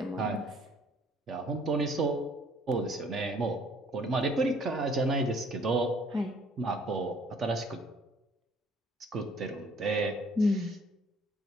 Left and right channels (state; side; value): normal; both; correlation 0.58